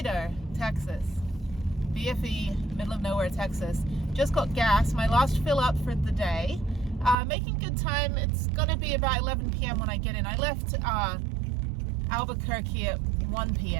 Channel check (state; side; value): drops out; left; at 7.2 s